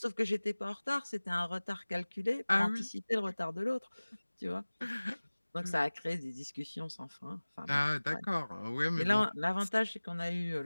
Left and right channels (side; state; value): both; inverted; correlation -1.00